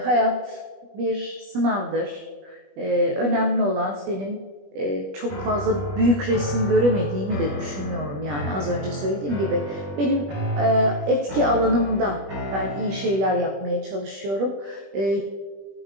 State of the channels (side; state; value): left; late; 21 ms